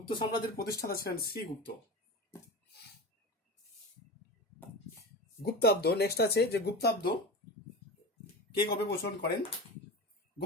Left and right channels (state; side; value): normal; both; correlation 0.28